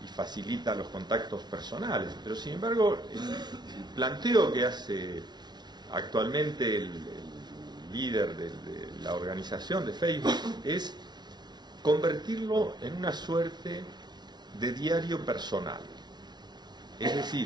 y facilita los contactos personales. Pero sin embargo, el planteo que hace actualmente el líder de la organización de Facebook es convertirlo en una suerte de diario personal. Es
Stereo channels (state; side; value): late; left; 0.20 ms